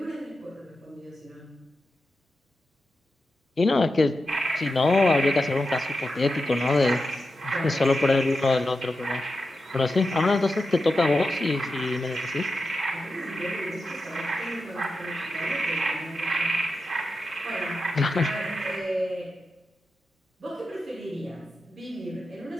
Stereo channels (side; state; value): both; normal; correlation 0.90